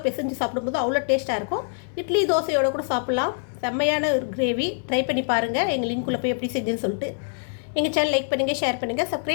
பிசைஞ்சு சாப்பிடும்போது அவ்வளோ டேஸ்ட்டாக இருக்கும். இட்லி தோசையோடு கூட சாப்பிட்லாம். செம்மையான ஒரு கிரேவி. ட்ரை பண்ணி பாருங்கள். எங்கள் லிங்க்குள்ளே போய் எப்படி செஞ்சுன்னு சொல்லிட்டு எங்கள் சேனல் லைக் பண்ணுங்கள், ஷேர் பண்ணுங்கள்,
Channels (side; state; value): right; silent; digital silence